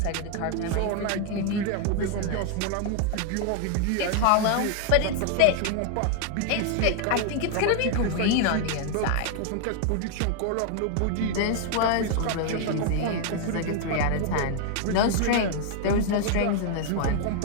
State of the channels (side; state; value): both; different; correlation 0.00